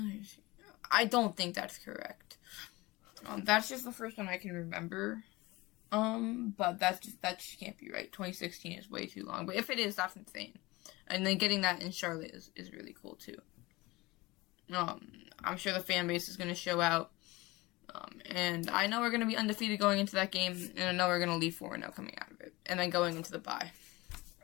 I don't think that's correct. That's just the first one I can remember. But that just can't be right. 2016 is way too long. But if it is, that's insane. And then getting that in Charlotte is really cool too. I'm sure the fan base is going to show out. And I know we're going to be undefeated going into that game, and I know we're going to leave 4-0 coming out of it, and then going into the bye.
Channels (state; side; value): quieter; right; 21.7 dB